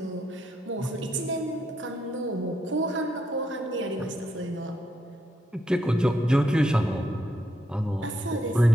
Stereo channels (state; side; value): normal; both; correlation 0.78